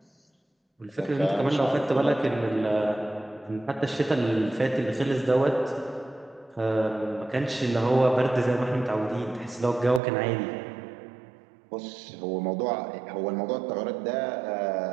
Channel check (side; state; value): left; drops out; at 10.0 s